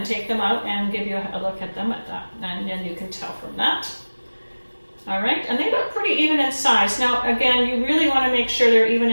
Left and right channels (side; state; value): both; inverted; correlation -1.00